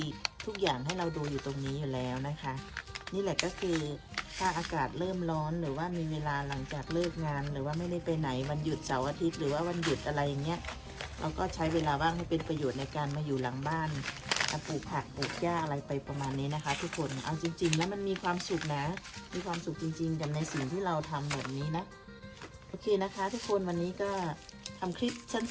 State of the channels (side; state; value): both; identical; correlation 1.00